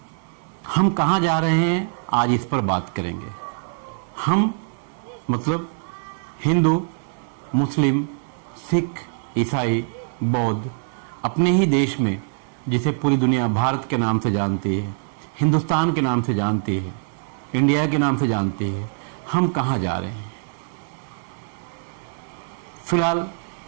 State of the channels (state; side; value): silent; left; 63 dB below the other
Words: हम कहाँ जा रहे हैं आज इस पर बात करेंगे। हम मतलब हिंदू, मुस्लिम, सिख, ईसाई, बौद्ध अपने ही देश में, जिसे पूरी दुनिया भारत के नाम से जानती है, हिंदुस्तान के नाम से जानती है, इंडिया के नाम से जानती है, हम कहाँ जा रहे हैं। फिलहाल